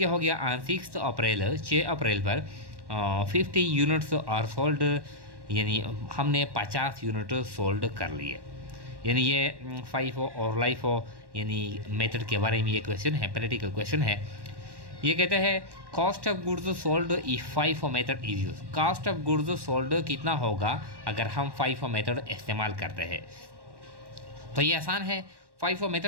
हो गया ऑन 6 अप्रैल 6 अप्रैल पर 50 यूनिट्स आर सोल्ड यानी हमने 50 यूनिट सोल्ड कर लिए। यानी ये फाइव और लाइफ हो यानी मेथड के बारे में ये क्वेश्चन है, प्रैक्टिकल क्वेश्चन है। ये कहते हैं cost of goods sold if five method is use. Cost of goods sold कितना होगा अगर हम फाइव मेथड इस्तेमाल करते हैं। तो ये आसान है। फाइव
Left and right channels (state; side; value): late; left; 1.1 ms